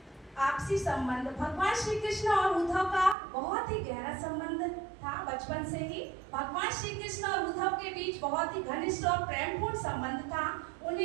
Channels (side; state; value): left; drops out; at 3.2 s